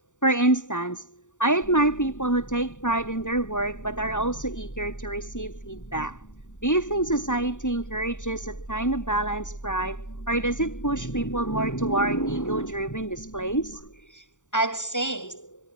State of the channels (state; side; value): late; right; 0.86 ms